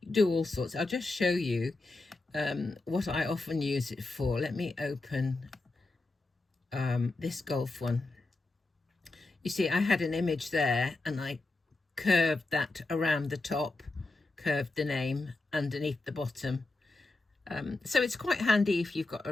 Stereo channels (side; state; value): right; quieter; 3.2 dB